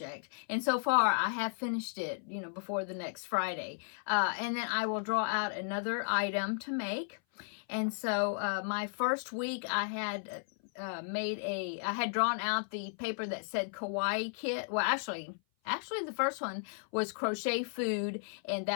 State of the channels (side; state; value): right; silent; 55 dB below the other